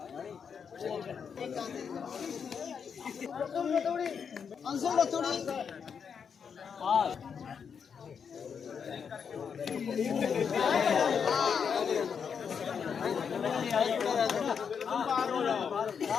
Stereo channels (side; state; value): right; quieter; 6.7 dB